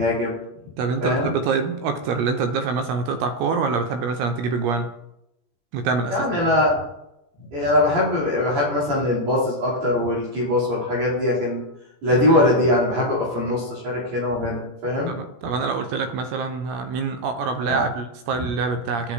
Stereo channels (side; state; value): left; late; 17 ms